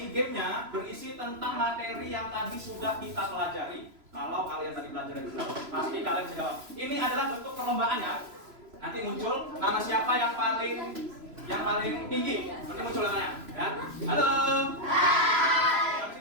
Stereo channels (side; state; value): left; late; 3.0 ms